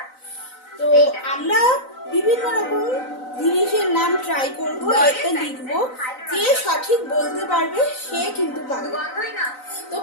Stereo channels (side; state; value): right; late; 3.9 ms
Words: তো আমরা বিভিন্ন রকম জিনিসের নাম ট্রাই করব, এতে লিখবো, যে সঠিক বলতে পারবে সে কিন্তু পাবে। তো